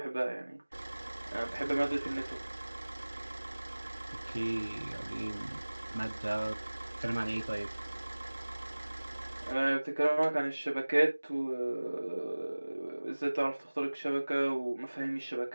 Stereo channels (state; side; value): inverted; both; correlation -1.00